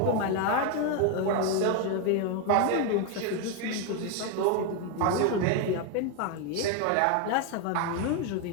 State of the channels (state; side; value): different; both; correlation 0.01